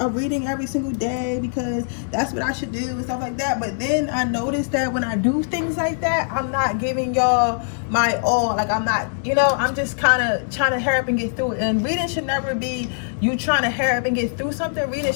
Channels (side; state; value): right; silent; digital silence